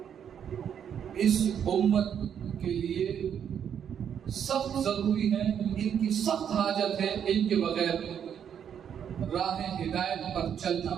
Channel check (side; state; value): left; quieter; 8.5 dB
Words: اس امت کے لیے سخت ضروری ہیں، ان کی سخت حاجت ہے. ان کے بغیر راہ ہدایت پر چلنا